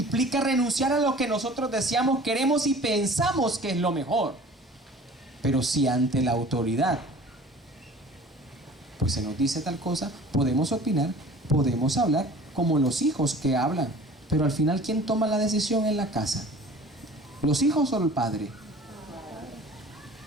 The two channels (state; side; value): normal; both; correlation 0.45